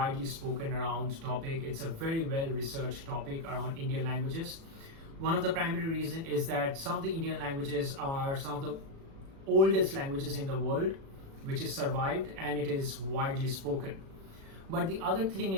spoken around topic. It's a very well researched topic around Indian languages. One of the primary reason is that some of the Indian languages are some of the oldest languages in the world, which is survived and it is widely spoken. But the other thing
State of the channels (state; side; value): late; left; 36 ms